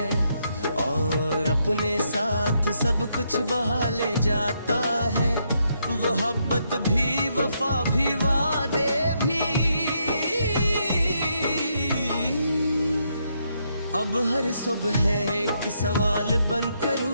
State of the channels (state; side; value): inverted; both; correlation -0.77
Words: और अपने साथ सब कुछ बहा ले जाता है। मोहब्बत भी, वफा भी, वादे भी, अब हर सुबह एक सवाल बनकर